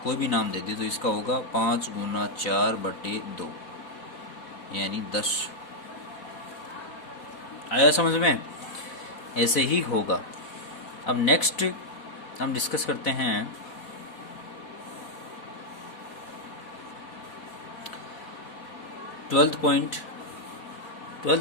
कोई भी नाम दे दे, तो इसका होगा 5 गुना 4/2 यानी 10। आया समझ में? ऐसे ही होगा। अब नेक्स्ट हम डिस्कस करते हैं 12th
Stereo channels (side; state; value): right; late; 4.2 ms